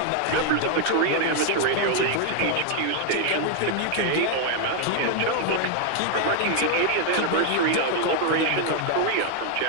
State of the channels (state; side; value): different; both; correlation 0.00